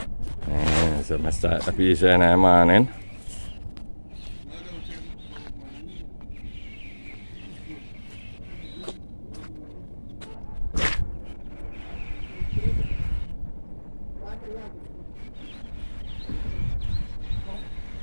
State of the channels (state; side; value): inverted; both; correlation -1.00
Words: So I start the bees in the morning.